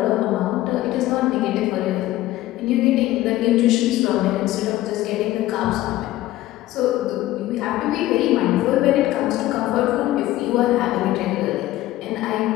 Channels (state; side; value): quieter; right; 15.7 dB